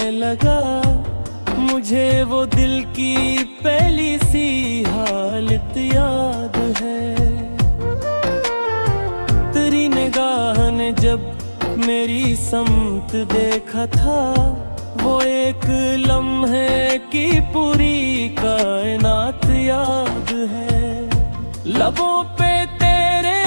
लगा, मुझे वो दिल की पहली सी हालत याद है। तेरी निगाह ने जब मेरी समत देखा था, वो एक लम्हे की पूरी कायनात याद है। लबों पे तेरे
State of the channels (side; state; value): both; inverted; correlation -1.00